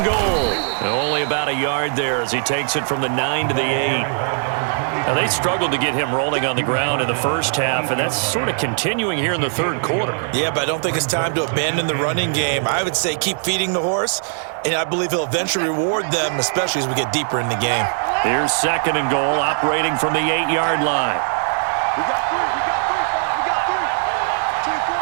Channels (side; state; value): left; silent; 62 dB below the other